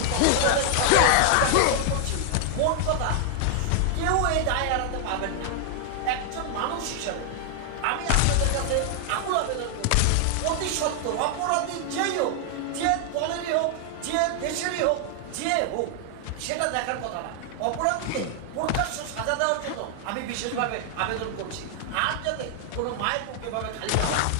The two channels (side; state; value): both; different; correlation 0.00